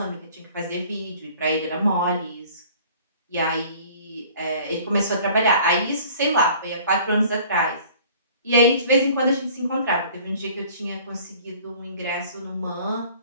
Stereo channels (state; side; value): inverted; both; correlation -0.50